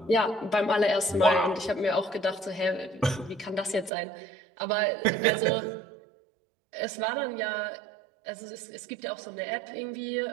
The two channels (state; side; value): drops out; left; at 3.9 s